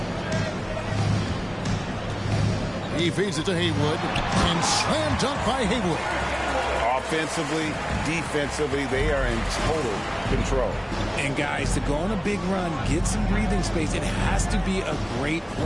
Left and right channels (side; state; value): both; identical; correlation 1.00